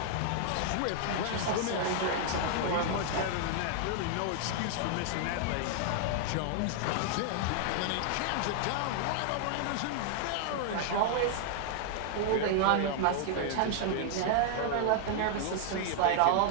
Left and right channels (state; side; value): different; both; correlation 0.00